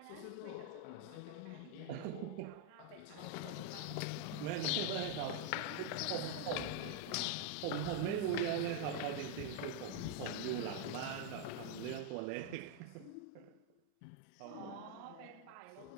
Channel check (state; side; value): different; both; correlation 0.00